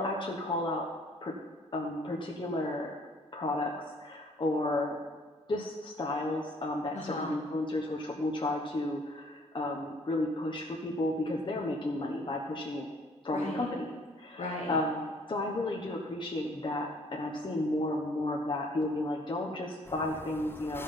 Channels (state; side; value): normal; both; correlation 0.59